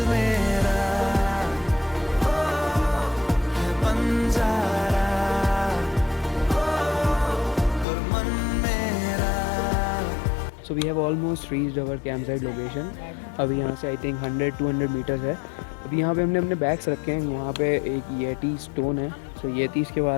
मेरा है बंजारा और मन मेरा। So we have almost reached our camp site location. अभी यहाँ से आई थिंक 100-200 मीटर्स है। अभी यहाँ पे हमने अपने बैग्स रखे हैं। वहाँ पे एक येटी स्टोन है। सो येटीज़ के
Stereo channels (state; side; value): drops out; right; at 7.9 s